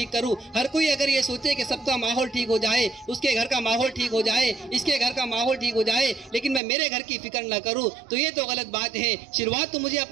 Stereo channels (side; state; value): left; drops out; at 6.6 s